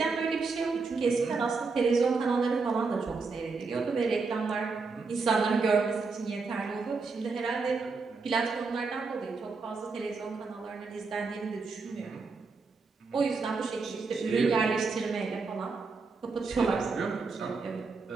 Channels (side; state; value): left; quieter; 4.4 dB